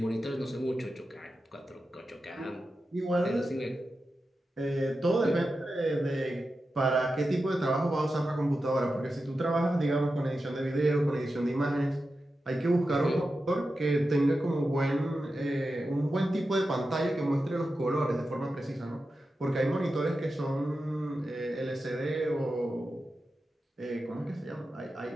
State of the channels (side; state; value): both; normal; correlation 0.91